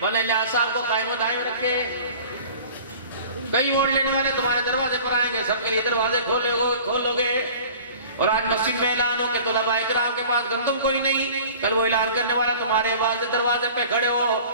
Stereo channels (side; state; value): both; inverted; correlation -0.44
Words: मौलाना साहब को कायम दायम रखे। कई वोट लेने वाले तुम्हारे दरवाजे पर आएंगे, सबके लिए दरवाजे खोलोगे। और आज मस्जिद में ऐलान हो कि तुलबाए किराम के पास गंदम कोई नहीं, कल वो ऐलान करने वाला तुम्हारे दरवाजे पे खड़े हो